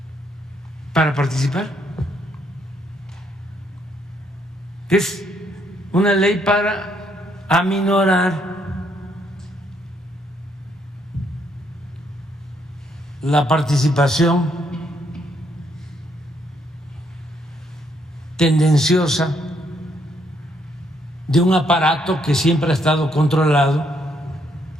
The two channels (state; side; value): normal; both; correlation 0.72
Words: para participar? Es una ley para aminorar la participación tendenciosa de un aparato que siempre ha estado controlado